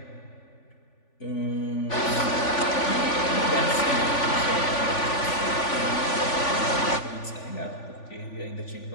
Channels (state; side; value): late; right; 3.5 ms